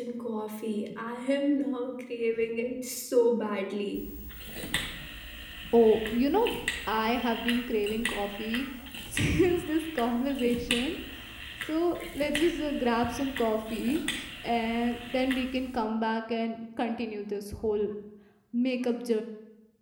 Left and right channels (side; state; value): both; identical; correlation 1.00